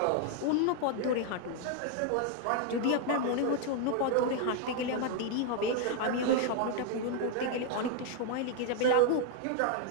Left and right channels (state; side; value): different; both; correlation 0.00